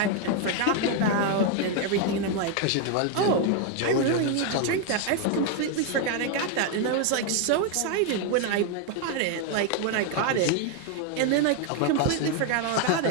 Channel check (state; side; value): different; both; correlation 0.01